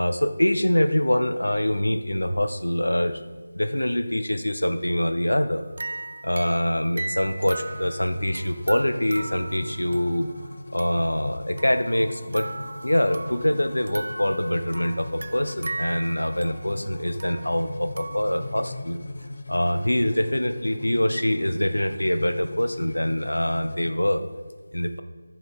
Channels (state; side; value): inverted; both; correlation -0.99